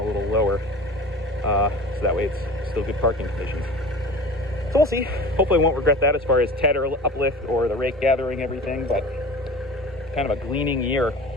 little lower. So that way it's still good parking conditions. So we'll see. Hopefully I won't regret that as far as tedder uplift or the rake gathering everything, but kind of a gleaning year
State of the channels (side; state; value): both; normal; correlation 0.36